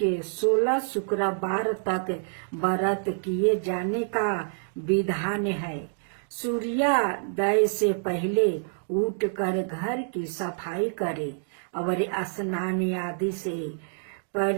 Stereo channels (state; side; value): silent; left; digital silence